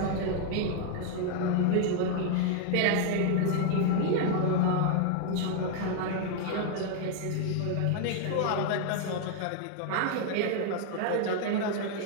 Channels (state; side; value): different; both; correlation 0.00